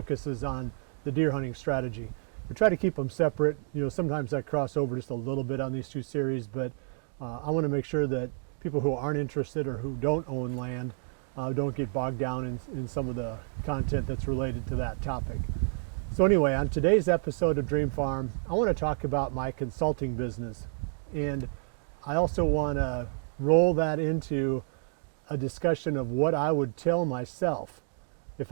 on the deer hunting strategy. We try to keep them separate. Sometimes I cross over just a little bit on these two series, but I want to make sure that people who aren't interested or who don't own land don't get bogged down in some of the content that's related to that topic. So anyway, on today's episode of Dream Farm, I want to talk about my consulting business. And I also want to roll that into a discussion of what I would tell myself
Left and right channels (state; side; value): silent; left; digital silence